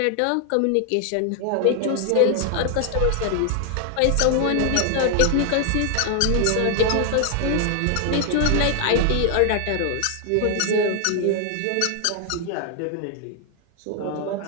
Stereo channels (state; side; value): different; both; correlation 0.00